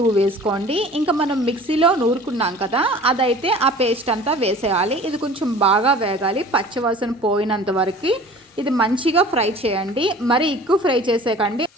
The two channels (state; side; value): normal; both; correlation 0.45